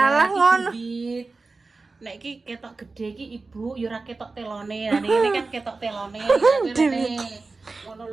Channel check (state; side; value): quieter; left; 3.8 dB